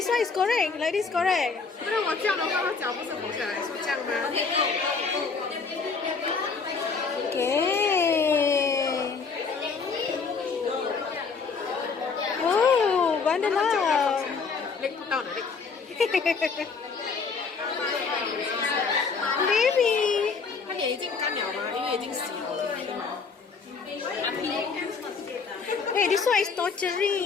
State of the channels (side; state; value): right; quieter; 5.0 dB